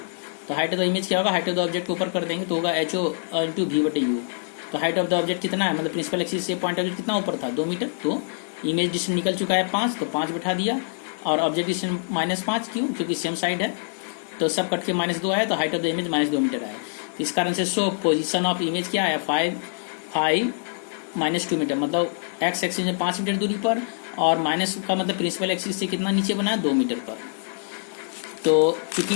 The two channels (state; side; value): silent; right; digital silence